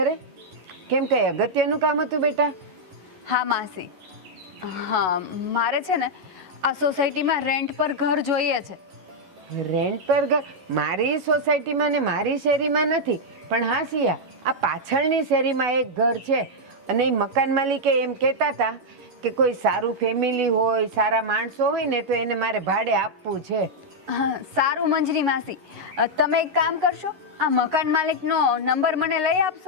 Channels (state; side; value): late; left; 11 ms